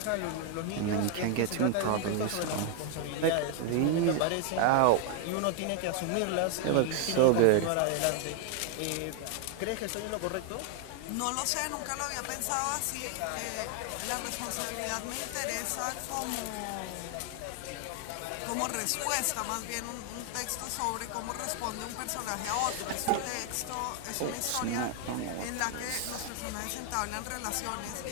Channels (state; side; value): different; both; correlation 0.00